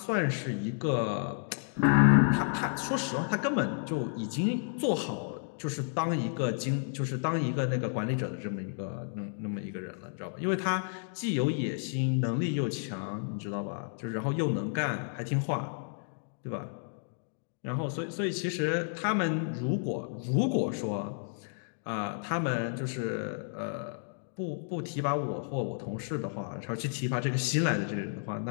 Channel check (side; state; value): right; silent; digital silence